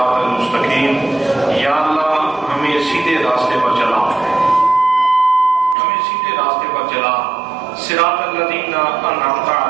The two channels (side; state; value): left; drops out; at 5.8 s